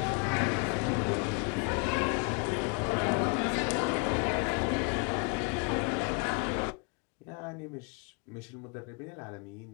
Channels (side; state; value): right; quieter; 34.8 dB